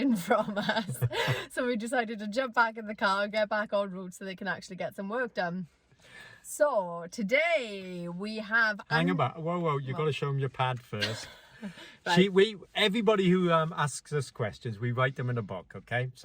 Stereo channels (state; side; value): identical; both; correlation 1.00